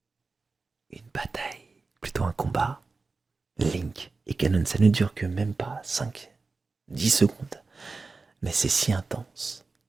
une bataille, plutôt un combat. Link et Ganon, ça ne dure que même pas 5-10 secondes. Mais c'est si intense.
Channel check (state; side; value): quieter; left; 4.0 dB